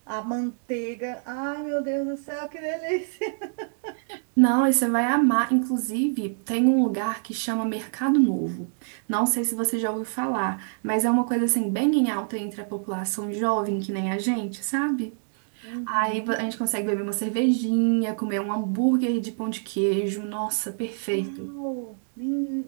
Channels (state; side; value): silent; left; digital silence